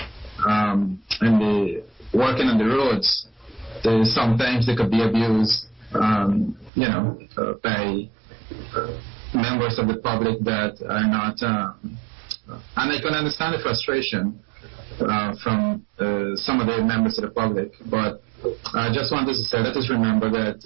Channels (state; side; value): drops out; left; at 6.7 s